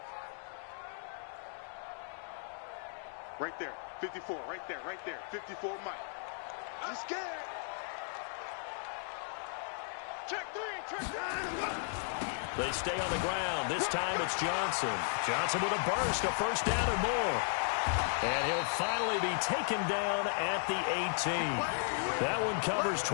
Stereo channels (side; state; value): right; silent; digital silence